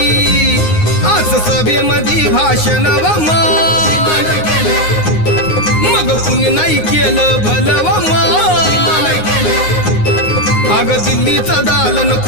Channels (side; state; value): right; late; 9.6 ms